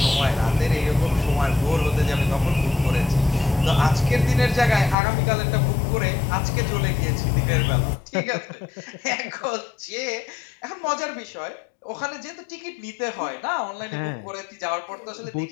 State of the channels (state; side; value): drops out; right; at 5.0 s